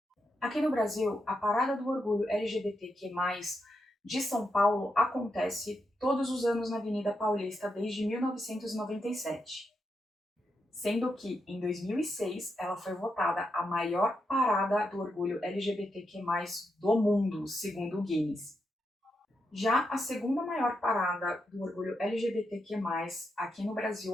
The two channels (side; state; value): both; normal; correlation 0.84